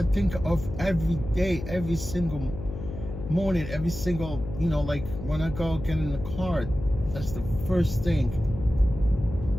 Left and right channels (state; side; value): noise; left; hum, 9 dB below the sound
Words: think of every day, every single morning, every single, you know, like when I go get in the car, that's the first thing